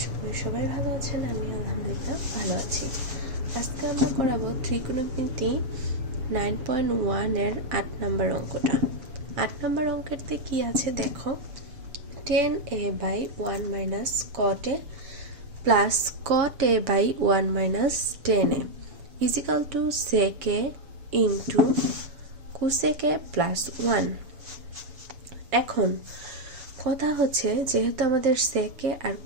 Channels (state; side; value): late; left; 7.1 ms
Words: করি সবাই ভালো আছেন। আমি আলহামদুলিল্লাহ ভালো আছি। আজকে আমরা করাবো ত্রিকোণমিতি 9.1 এর 8 নম্বর অঙ্কটা। 8 নম্বর অঙ্কেরতে কি আছে দেখো, tan a by 1 minus cot a plus cot a by 1 minus tan a is equal to sec a into cosec a plus 1। এখন কথা হচ্ছে, যেহেতু আমাদের সেকে আর